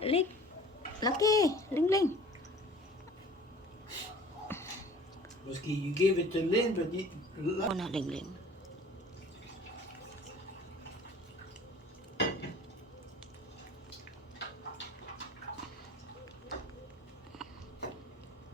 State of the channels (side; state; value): both; normal; correlation 0.47